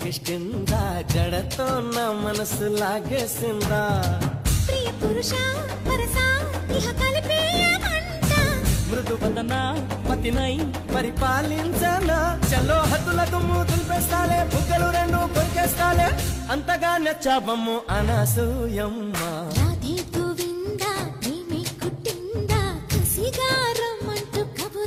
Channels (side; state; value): both; identical; correlation 1.00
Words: జడతో నా మనసు లాగేసిందా ప్రియ పురుష వరస ఇహ కలిపేయమంట మృదు వదన పతినై పరిపాలించనా చలో హద్దుల దుమ్ము దులిపేస్తాలే బుగ్గలు రెండు కొరికేస్తాలే అంతగా నచ్చావమ్ము అనసూయమ్మ రాధే గోవింద ప్రేమే కుట్టిందా కసిగా రమ్మంటూ